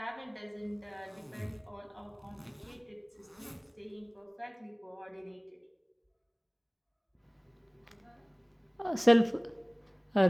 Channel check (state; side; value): identical; both; correlation 1.00